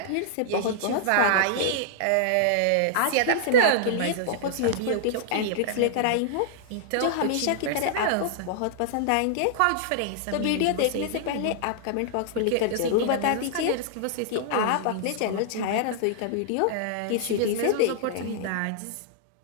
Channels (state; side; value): different; both; correlation -0.01